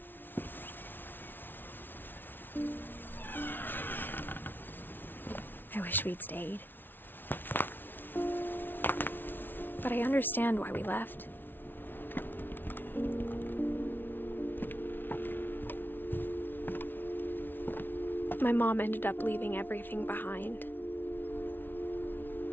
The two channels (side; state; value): right; late; 0.096 ms